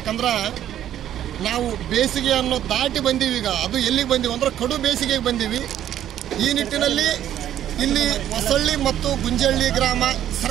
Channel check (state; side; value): quieter; left; 11.2 dB